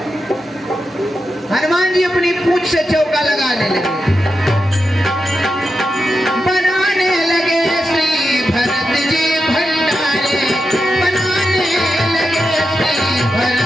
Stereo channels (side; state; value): both; normal; correlation 0.88